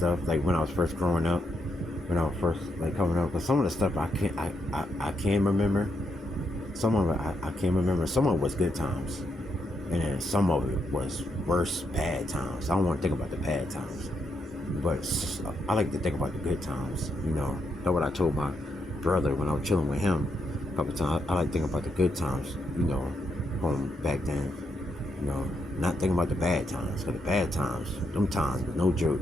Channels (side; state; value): both; normal; correlation 0.79